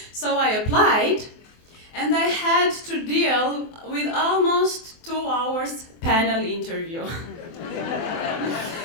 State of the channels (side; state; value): right; late; 24 ms